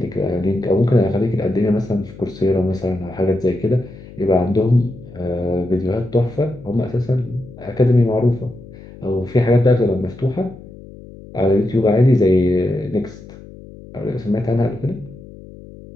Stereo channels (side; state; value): left; noise; hum, 18 dB below the sound